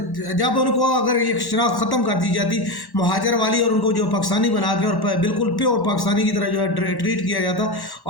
جب ان کو اگر یہ شناخت ختم کر دی جاتی مہاجر والی اور ان کو جو پاکستانی بنا کے اور بالکل پیور پاکستانی کی طرح جو ہے ٹریٹ کیا جاتا،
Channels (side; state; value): right; late; 1.1 ms